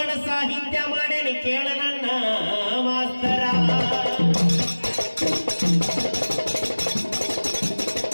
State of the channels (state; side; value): inverted; both; correlation -1.00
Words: ಸಾಹಿತ್ಯ ಮಾಡೇನಿ, ಕೇಳ ನನ್ನ ಮಾಸ್ತರ.